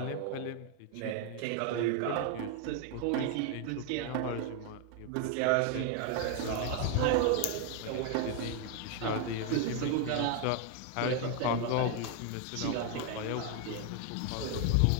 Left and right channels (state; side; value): different; both; correlation 0.00